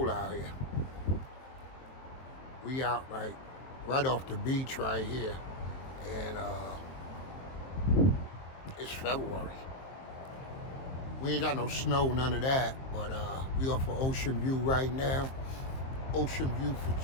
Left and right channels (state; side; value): late; right; 23 ms